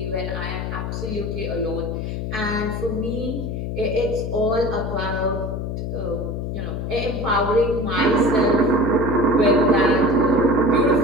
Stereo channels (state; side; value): noise; left; hum, 4 dB below the sound